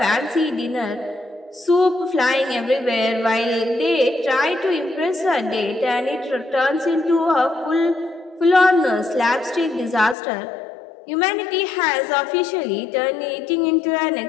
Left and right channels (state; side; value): drops out; right; at 10.2 s